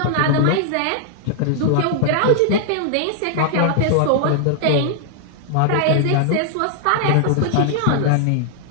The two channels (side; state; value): both; different; correlation -0.01